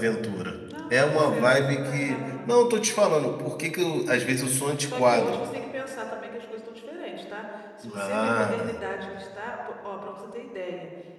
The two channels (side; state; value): both; identical; correlation 1.00